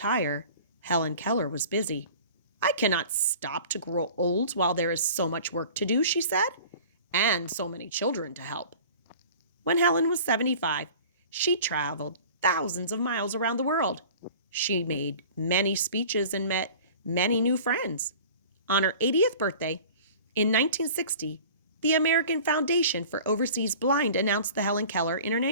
Helen Keller was busy. "I cannot stop to grow old while there is so much work to do," she said, "and so many children to help." When Helen was 75, she traveled thousands of miles around the world. She made many speeches and met many new friends. On her 80th birthday, in 1960, the American Foundation for Overseas Blind announced the Helen Keller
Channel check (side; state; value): both; inverted; correlation -0.43